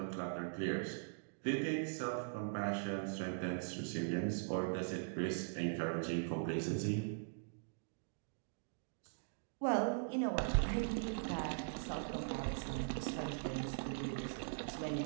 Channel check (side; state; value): left; silent; digital silence